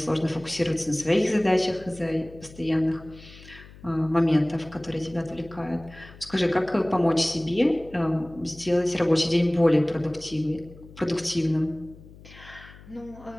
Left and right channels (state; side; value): noise; left; hum, 20 dB below the sound